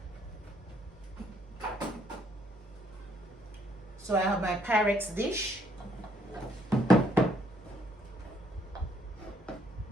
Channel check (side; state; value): both; normal; correlation 0.68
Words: So I have my Pyrex dish. And